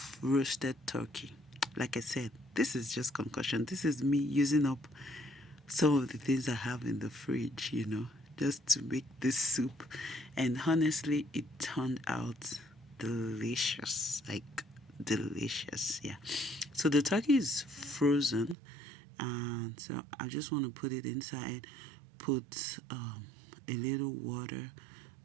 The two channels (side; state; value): left; drops out; at 18.6 s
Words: roasted turkey. Like I said, this is just concussion. This is me using up some of the things I have in the fridge, just to make this soup. And honestly, it turned out delicious. Like, delicious. Yeah. So the turkey is frozen. And so I just want to put it inside, put a little water,